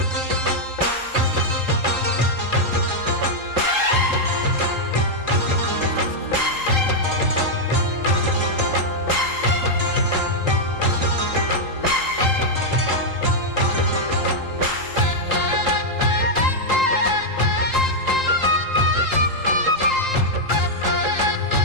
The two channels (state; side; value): late; left; 3.8 ms